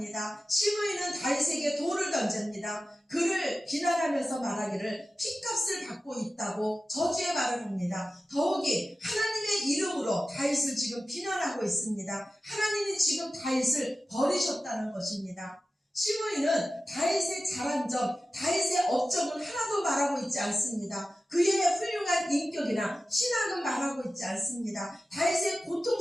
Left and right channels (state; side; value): normal; both; correlation 0.95